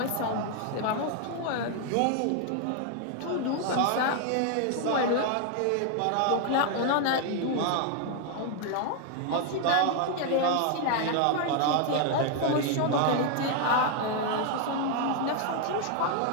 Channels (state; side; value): different; both; correlation 0.00